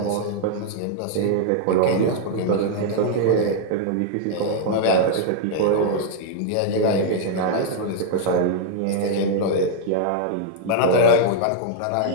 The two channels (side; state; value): both; different; correlation -0.01